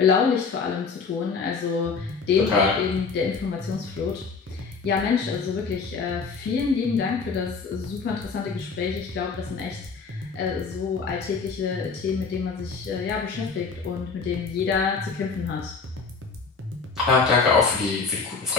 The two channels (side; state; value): right; quieter; 4.9 dB